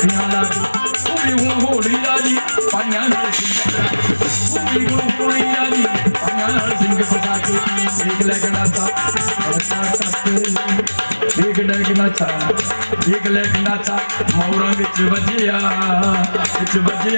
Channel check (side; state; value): both; inverted; correlation -1.00